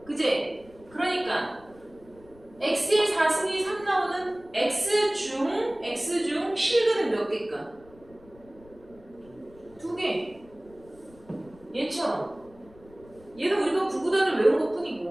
그지? 그러니까 x의 4승이 3 나오는 x 중 실근은 몇 개일까? 2개. 얘처럼. 얘는 우리가 구구단을 외운 것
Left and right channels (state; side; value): noise; left; rumble, 25 dB below the sound